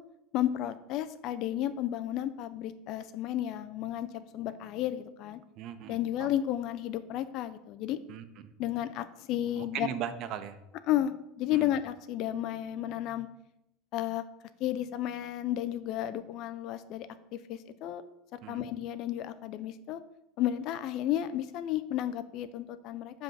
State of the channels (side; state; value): right; quieter; 10.1 dB